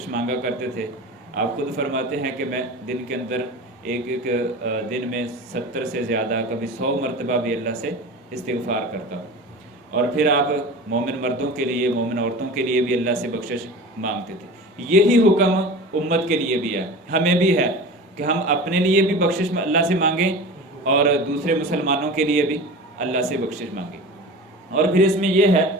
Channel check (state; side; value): normal; both; correlation 0.34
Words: مانگا کرتے تھے۔ آپ خود فرماتے ہیں کہ میں دن کے اندر ایک دن میں 70 سے زیادہ، کبھی 100 مرتبہ بھی اللہ سے استغفار کرتا ہوں۔ اور پھر آپ مومن مردوں کے لیے، مومن عورتوں کے لیے بھی اللہ سے بخشش مانگتے تھے۔ یہی حکم امت کے لیے بھی ہے، ہمیں بھی ہے کہ ہم اپنے لیے بھی بخشش اللہ سے مانگیں اور دوسرے مسلمانوں کے لیے بھی اللہ سے بخشش مانگیں۔ اور پھر اس میں یہ ہے